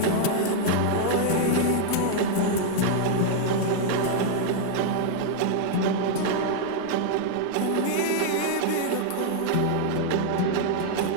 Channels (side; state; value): both; different; correlation 0.00